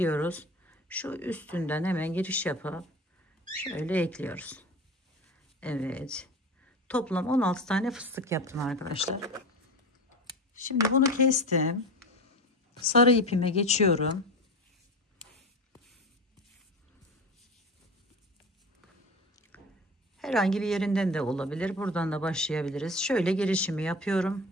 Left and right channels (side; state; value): both; normal; correlation 0.29